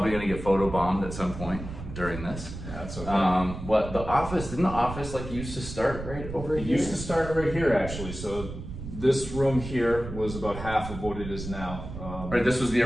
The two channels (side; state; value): right; noise; rumble, 9 dB below the sound